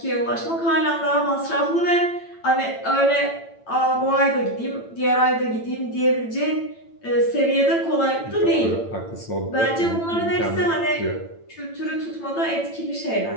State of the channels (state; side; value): late; right; 8.9 ms